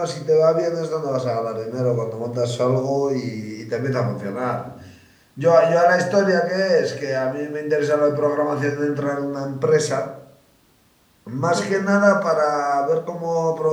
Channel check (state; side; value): identical; both; correlation 1.00